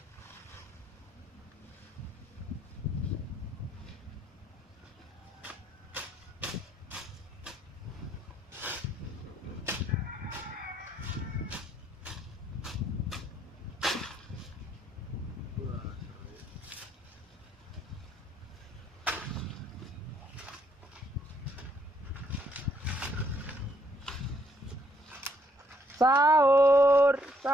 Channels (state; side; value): normal; both; correlation 0.69